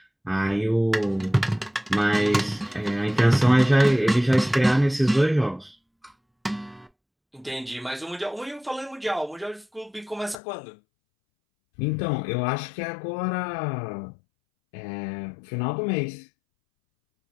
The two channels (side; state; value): right; drops out; at 10.4 s